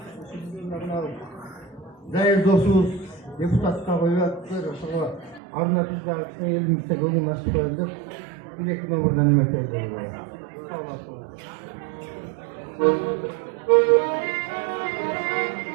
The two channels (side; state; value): left; drops out; at 5.4 s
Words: değerli dostumuz депутатқа koyuyorlar. Sonra arnatızlar elimizde golü nasıl koyduk. Bir iki numaradan emek ediyorlar. Sağ olasın.